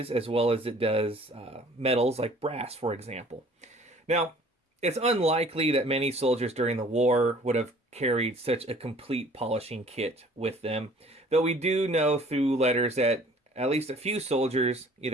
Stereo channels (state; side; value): normal; both; correlation 0.52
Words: as well as it does metals like brass, for example. Now, it's unlikely that many soldiers during the war would have carried such a complete polishing kit with them, though we do know through letters that at least a few soldiers